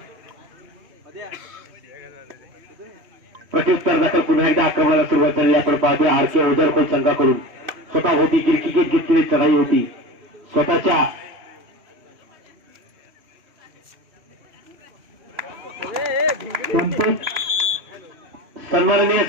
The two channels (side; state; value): left; late; 3.0 ms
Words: प्रत्युत्तर दाखल पुन्हा एकदा आक्रमणाला सुरुवात झाली. आपण पाहतोय आर.के. ओझरखोल संघाकडून स्वतः होती गिरकी घेतलेली चढाई होती. स्वतःच्या सन्माननीय